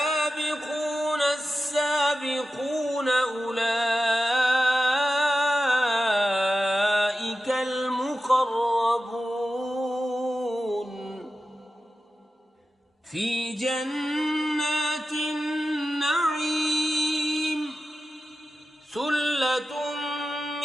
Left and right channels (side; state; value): both; normal; correlation 0.93